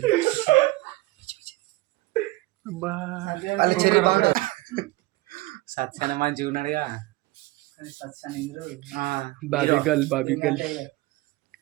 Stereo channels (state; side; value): quieter; left; 20.3 dB